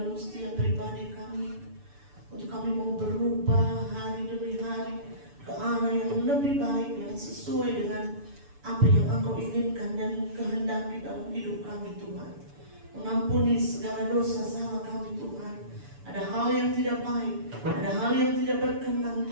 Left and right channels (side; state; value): left; late; 6.9 ms